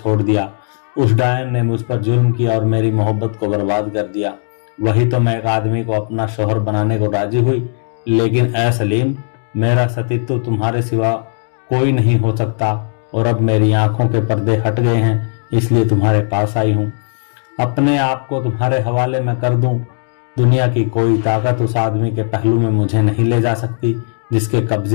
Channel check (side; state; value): right; silent; digital silence